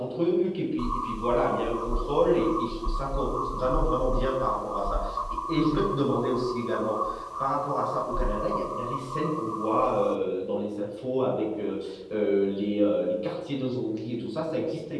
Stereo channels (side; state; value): both; identical; correlation 1.00